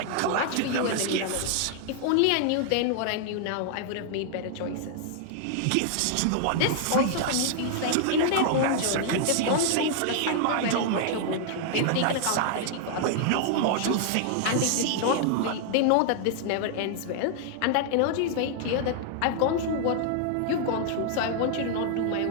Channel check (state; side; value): different; both; correlation 0.00